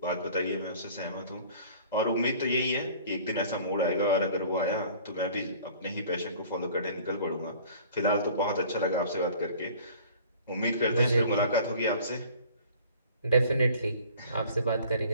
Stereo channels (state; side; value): inverted; both; correlation -0.49